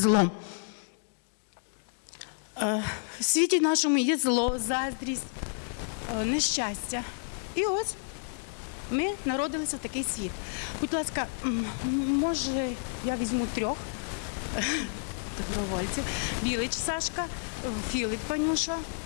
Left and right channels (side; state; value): right; silent; digital silence